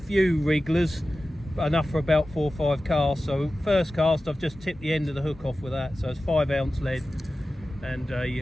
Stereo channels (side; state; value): both; normal; correlation 0.95